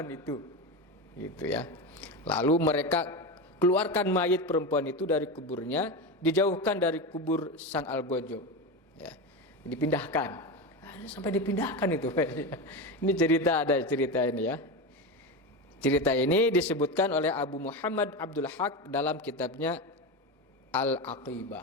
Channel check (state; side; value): normal; both; correlation 0.19